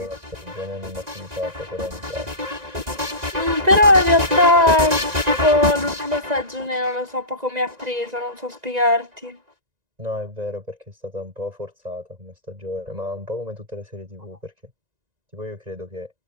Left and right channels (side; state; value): left; late; 1.9 ms